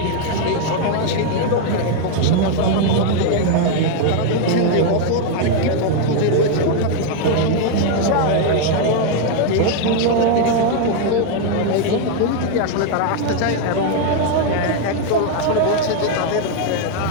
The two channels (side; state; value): both; different; correlation 0.00